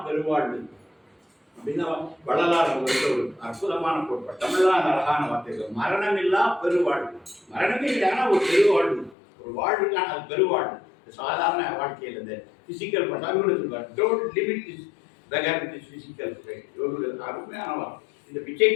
பெருவாழ்வு அப்படின்னா வள்ளலார் ஒரு அற்புதமான கோட்பாடு. தமிழ்தான் அழகான வார்த்தைகள். மரணமில்லா பெருவாழ்வு. மரணமே இல்லைன்னா ஒரு பெருவாழ்வு, ஒரு வாழ்வுக்கான அது பெருவாழ்வு. சாதாரண வாழ்க்கையில் இந்த physical don't limit this beggar with this physical frame. அருமையான வார்த்தை. இந்த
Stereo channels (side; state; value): right; drops out; at 9.2 s